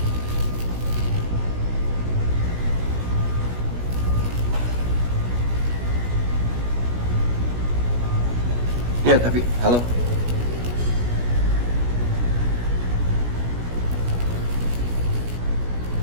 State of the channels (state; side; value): late; left; 17 ms